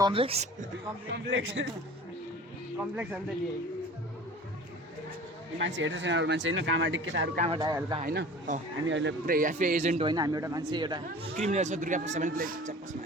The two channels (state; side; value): normal; both; correlation 0.42